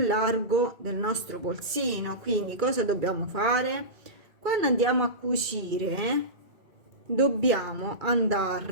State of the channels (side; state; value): left; late; 2.3 ms